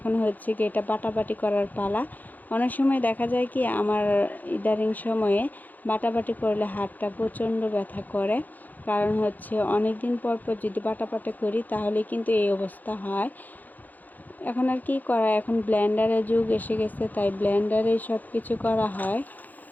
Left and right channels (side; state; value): right; late; 0.083 ms